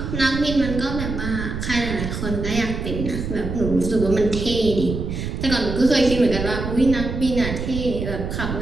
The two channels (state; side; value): noise; right; rumble, 5 dB below the sound